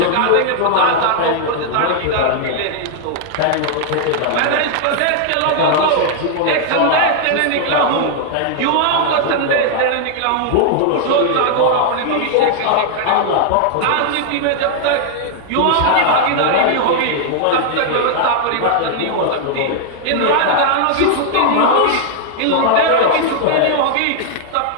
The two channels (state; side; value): different; both; correlation -0.01